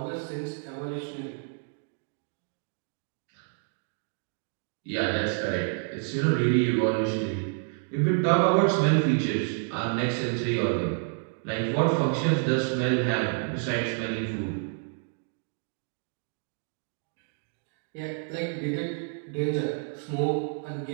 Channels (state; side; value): silent; left; 59 dB below the other